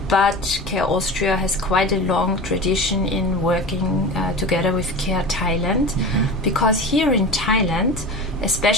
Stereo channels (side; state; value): both; normal; correlation 0.31